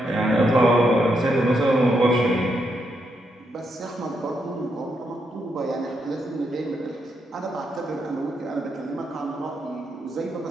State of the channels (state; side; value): normal; both; correlation 0.80